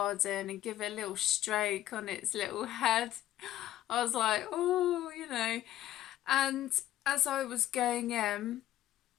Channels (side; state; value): right; quieter; 13.3 dB